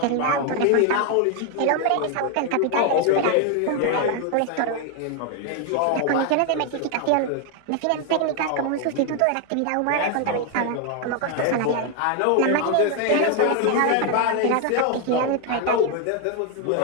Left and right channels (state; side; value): different; both; correlation 0.01